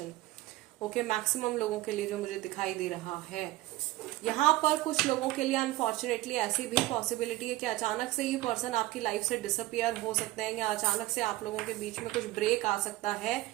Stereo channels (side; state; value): left; quieter; 17.6 dB